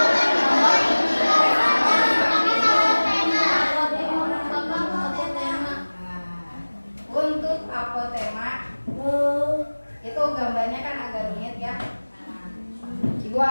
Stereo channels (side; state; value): both; inverted; correlation -1.00